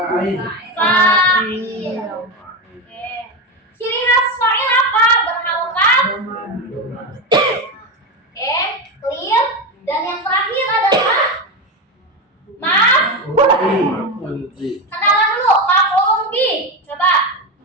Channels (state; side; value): normal; both; correlation 0.16